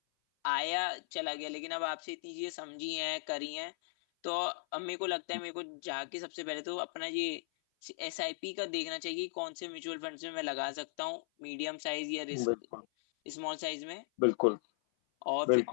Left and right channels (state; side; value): silent; right; 53 dB below the other